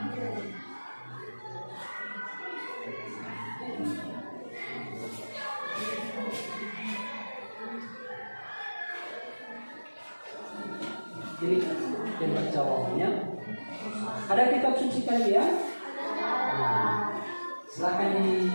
Ini lebar jawabannya. Ada kitab suci kalian? Nah, silakan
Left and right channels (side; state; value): both; inverted; correlation -1.00